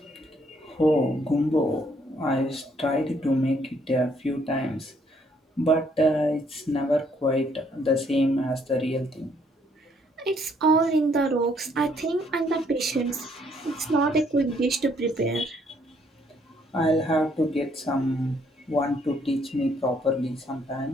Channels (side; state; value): both; normal; correlation 0.68